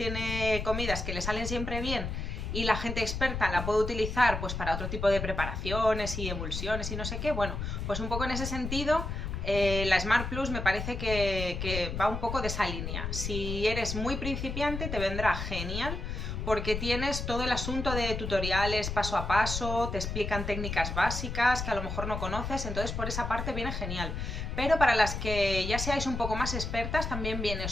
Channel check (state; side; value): noise; left; rumble, 4 dB below the sound